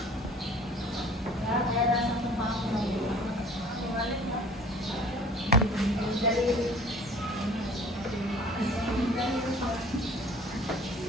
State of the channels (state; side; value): normal; both; correlation 0.49